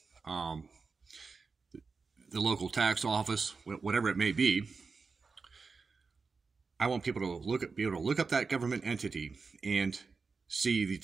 the local tax office, whatever it may be. I want people to be able to look up that government entity and see the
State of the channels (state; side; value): quieter; left; 4.6 dB